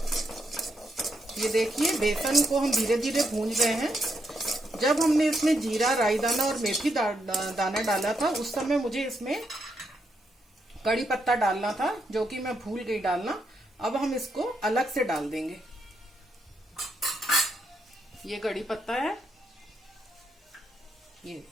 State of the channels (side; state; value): both; normal; correlation 0.79